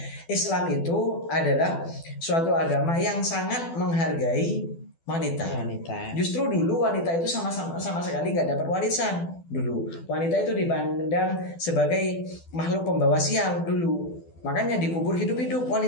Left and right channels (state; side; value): late; right; 12 ms